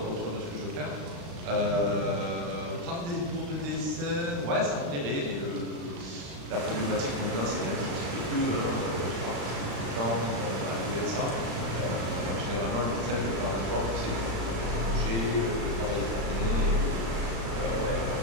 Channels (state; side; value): late; left; 36 ms